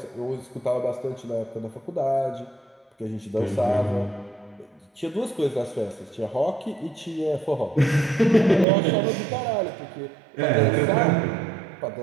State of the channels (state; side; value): drops out; left; at 8.7 s